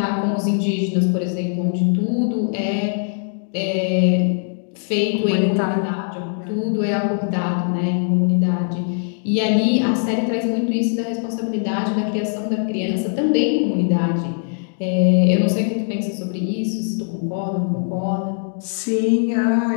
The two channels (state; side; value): silent; right; 65 dB below the other